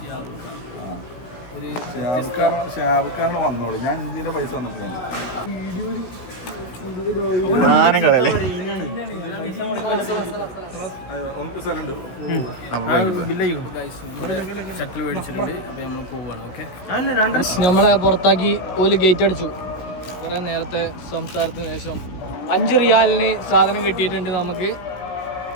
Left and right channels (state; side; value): late; right; 16 ms